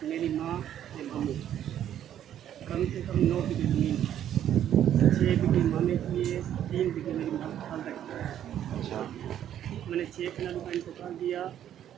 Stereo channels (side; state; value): left; quieter; 10.7 dB